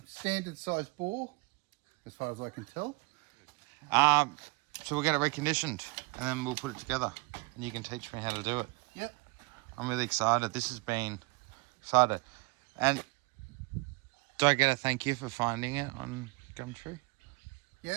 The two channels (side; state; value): left; quieter; 25.7 dB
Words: standard size bore, as far as I can tell. So we'll get it reconditioned and then we'll put it together and you can teach me how to do it. Yep. I'm really excited. This has been excited. And do I get a thank you for finding it on Gumtree?